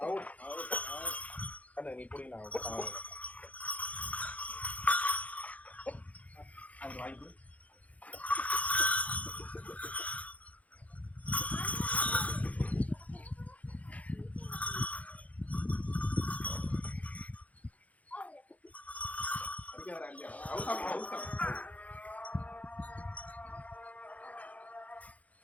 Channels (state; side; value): late; right; 0.070 ms